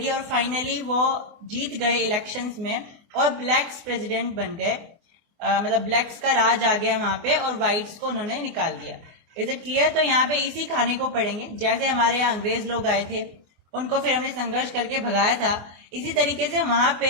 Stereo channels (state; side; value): late; left; 24 ms